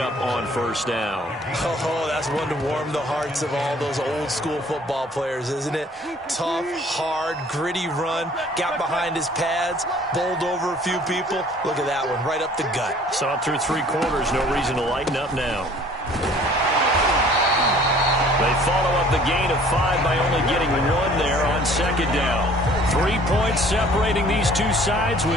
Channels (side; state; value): both; normal; correlation 0.53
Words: on first down. Oh, that's one to warm the hearts of all those old school football players, isn't it? Tough, hard, gritty run. Got behind his pads. Bowled over a few people. Look at that one, right up the gut. Saw it through 3 quarters. No reason to lighten up now. They follow up the gain of 5 by only getting 1 there on second down. 3 points separating these two sides